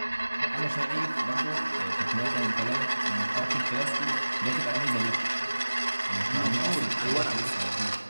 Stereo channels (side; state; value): both; inverted; correlation -1.00